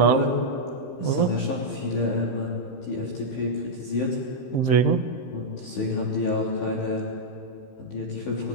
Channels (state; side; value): late; right; 15 ms